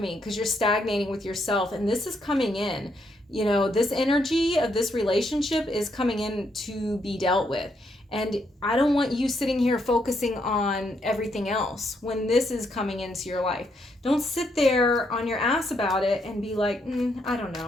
because you're stagnating with yourself. And this is coming in You know, this energy of this relationship is coming in to be dealt with. And I don't want you sitting here focusing on everything else when this is coming into your life. Don't sit there on your ass about it and be like, I don't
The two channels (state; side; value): normal; both; correlation 0.76